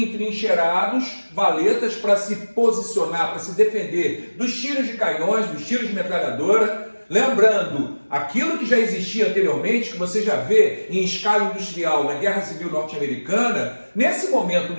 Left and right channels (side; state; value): both; inverted; correlation -1.00